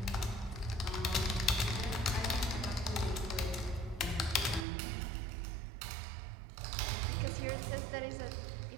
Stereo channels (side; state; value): left; drops out; at 4.7 s